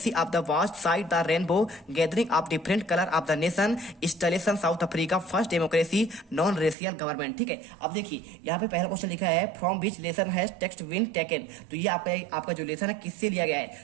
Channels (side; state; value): left; drops out; at 6.8 s